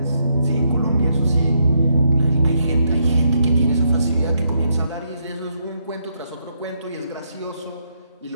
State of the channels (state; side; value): inverted; both; correlation -0.77